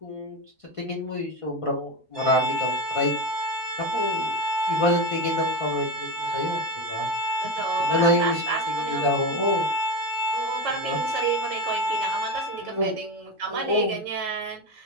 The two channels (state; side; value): normal; both; correlation 0.18